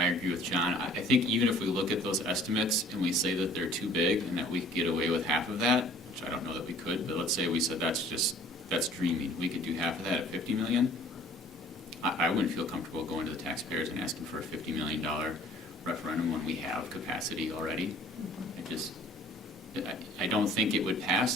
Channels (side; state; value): both; normal; correlation 0.52